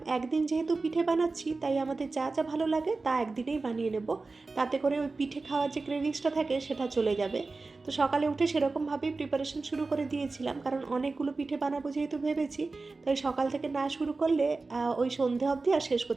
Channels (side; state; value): left; quieter; 3.7 dB